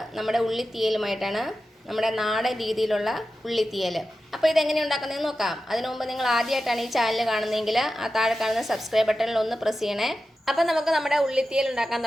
നമ്മുടെ ഉള്ളിത്തീയലുമായിട്ടാണ്. നമ്മുടെ നാടൻ രീതിയിലുള്ള ഉള്ളിത്തീയൽ. അപ്പോൾ ഇതെങ്ങനെ ഉണ്ടാക്കുന്നതെന്ന് നോക്കാം. അതിനു മുമ്പ് നിങ്ങൾ ആദ്യമായിട്ടാണ് ഈ ചാനൽ കാണുന്നതെങ്കിൽ ആ താഴെ കാണുന്ന സബ്സ്ക്രൈബ് ബട്ടണിൽ ഒന്ന് പ്രസ് ചെയ്യണേ. അപ്പോൾ നമുക്ക് നമ്മുടെ ഉള്ളിത്തീയൽ ഉണ്ടാക്കാൻ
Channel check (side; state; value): both; normal; correlation 0.93